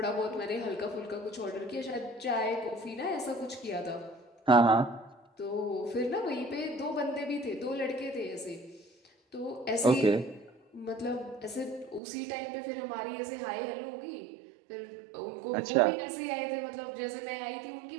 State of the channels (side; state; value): left; drops out; at 12.0 s